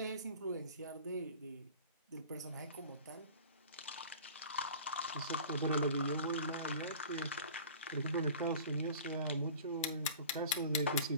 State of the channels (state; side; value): inverted; both; correlation -0.42